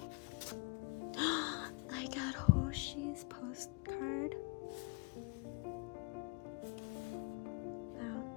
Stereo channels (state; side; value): quieter; right; 31.0 dB